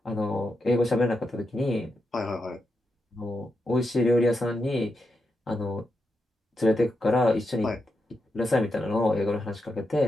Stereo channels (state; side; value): normal; both; correlation 0.85